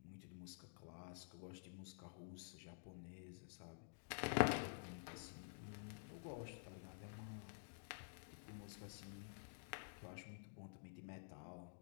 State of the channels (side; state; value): right; silent; digital silence